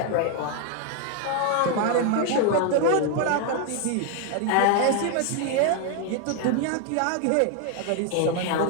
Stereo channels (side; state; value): both; different; correlation 0.00